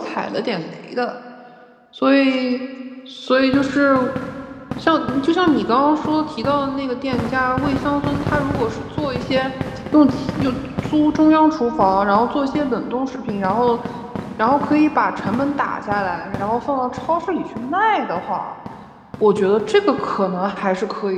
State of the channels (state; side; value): identical; both; correlation 1.00